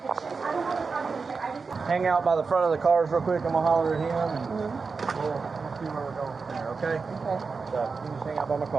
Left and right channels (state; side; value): quieter; left; 4.7 dB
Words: Hang out by the front of the cars real quick. I'm gonna holler at him and we'll see where we're going from there. Okay? Okay. So you can just hang out by my